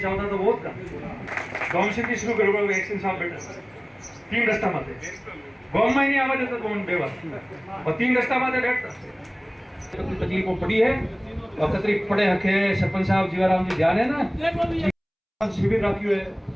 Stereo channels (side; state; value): both; identical; correlation 1.00